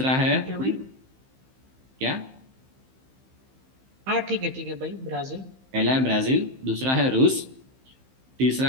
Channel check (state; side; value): late; left; 15 ms